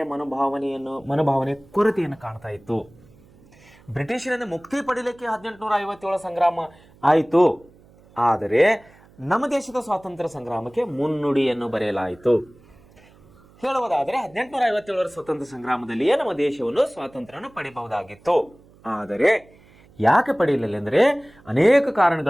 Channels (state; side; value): noise; right; hum, 27 dB below the sound